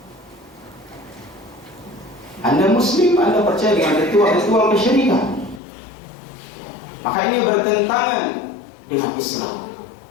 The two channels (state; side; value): drops out; right; at 5.6 s